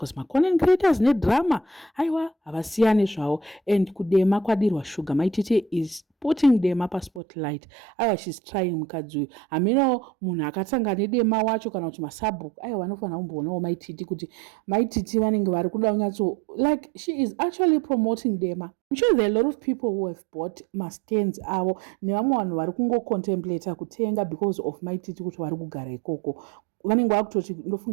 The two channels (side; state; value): left; drops out; at 7.2 s